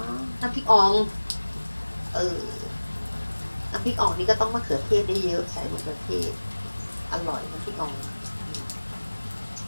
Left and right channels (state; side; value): inverted; both; correlation -1.00